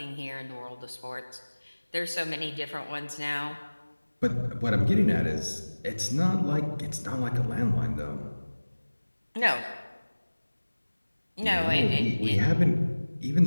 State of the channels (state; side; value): inverted; both; correlation -1.00